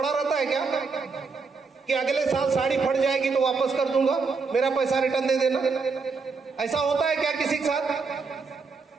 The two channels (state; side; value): quieter; left; 4.7 dB